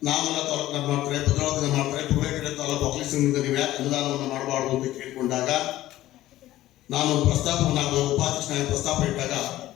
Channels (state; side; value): quieter; right; 15.0 dB